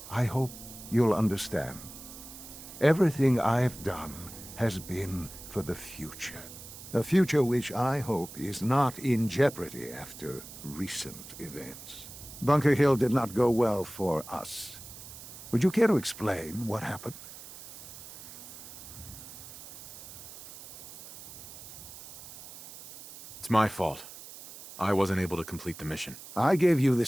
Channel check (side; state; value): right; noise; hiss, 14 dB below the sound